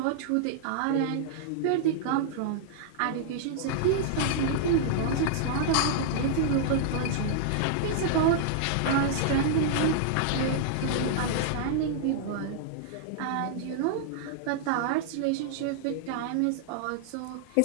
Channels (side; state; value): both; different; correlation -0.01